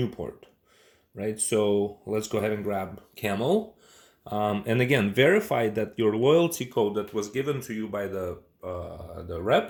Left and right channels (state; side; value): identical; both; correlation 1.00